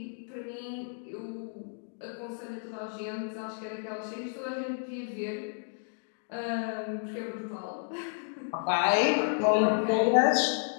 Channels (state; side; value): silent; right; digital silence